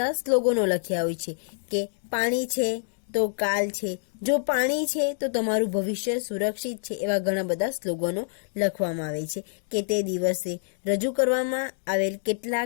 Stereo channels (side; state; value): right; silent; digital silence